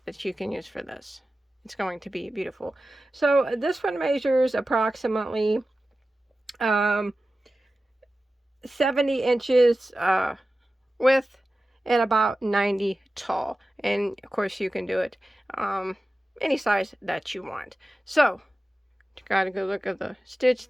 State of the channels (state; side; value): normal; both; correlation 0.94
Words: that you can use for this. It's going to be beautiful. So this one measures approximately 70 inches width and about 90 tall. And of course you can do it any size that you want. So you got a good look at the stitch